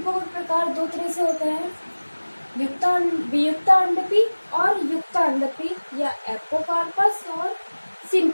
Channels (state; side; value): inverted; both; correlation -1.00